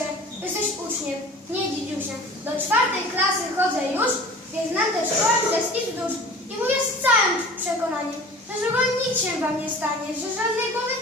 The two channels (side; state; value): both; normal; correlation 0.42